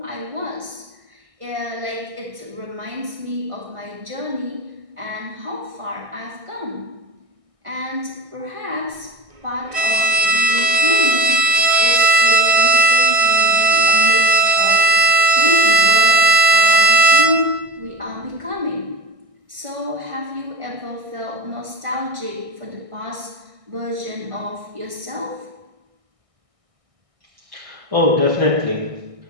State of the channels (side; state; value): left; late; 1.6 ms